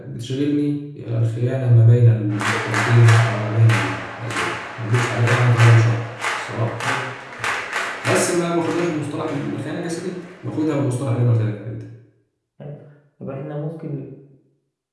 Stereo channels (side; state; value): both; identical; correlation 1.00